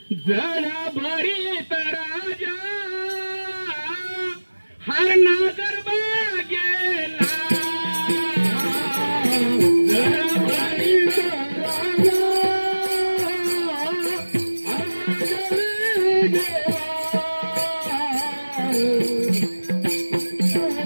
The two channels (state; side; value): inverted; both; correlation -1.00